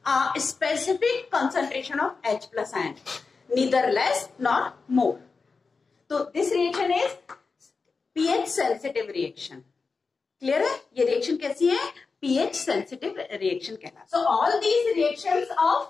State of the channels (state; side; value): quieter; right; 4.5 dB